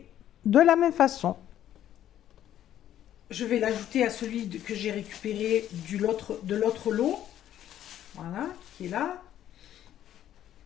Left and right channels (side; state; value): right; quieter; 11.5 dB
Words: de la même façon. Je vais l'ajouter à celui que j'ai récupéré de l'autre lot. Voilà, qui est là.